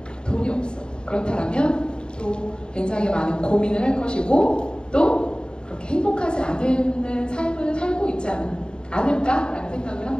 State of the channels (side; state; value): right; late; 0.049 ms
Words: 돈이 없어. 그렇다면 또 굉장히 많은 고민을 할 것이고 또 그렇게 행복하지 않은 삶을 살고 있지 않을까라는 생각을